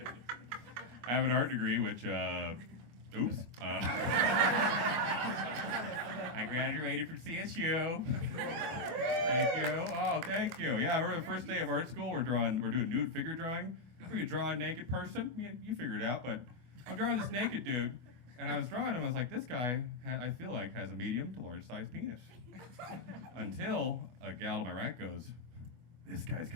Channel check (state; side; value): late; left; 24 ms